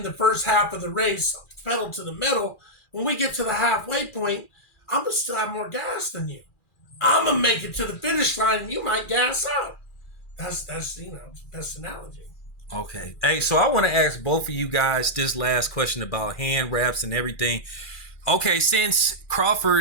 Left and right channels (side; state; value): right; late; 2.4 ms